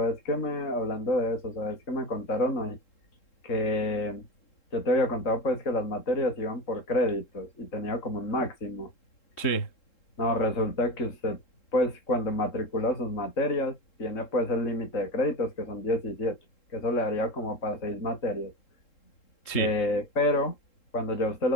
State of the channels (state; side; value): late; right; 3.7 ms